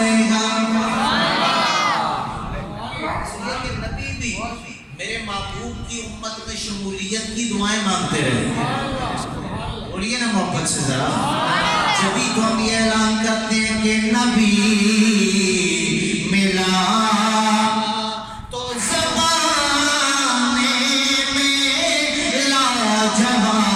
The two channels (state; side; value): identical; both; correlation 1.00